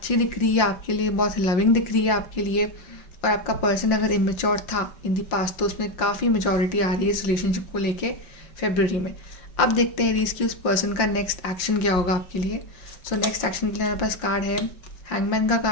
दिख रही है आपके लिए, बहुत लविंग दिख रही है आपके लिए। और आपका पर्सन अगर इमेच्योर था इन दी पास्ट, तो उसमें काफ़ी मेचोरिटी आ रही है इस रिलेशनशिप को लेके फेब्रुअरी में। अब देखते हैं एरीज की उस पर्सन का नेक्स्ट एक्शन क्या होगा आपके लिए। सो नेक्स्ट एक्शन के लिए हमारे पास कार्ड है हैंगमैन का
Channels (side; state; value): right; late; 5.7 ms